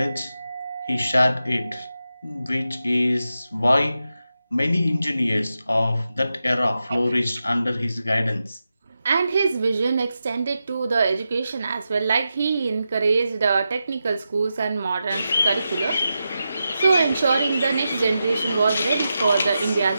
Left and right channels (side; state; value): both; inverted; correlation -0.89